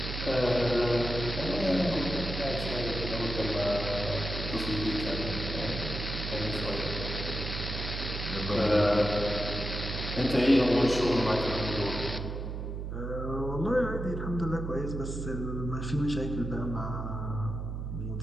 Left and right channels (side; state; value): right; noise; hum, 5 dB below the sound